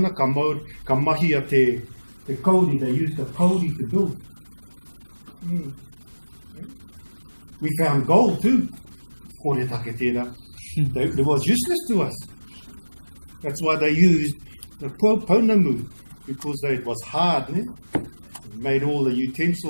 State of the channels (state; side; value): inverted; both; correlation -1.00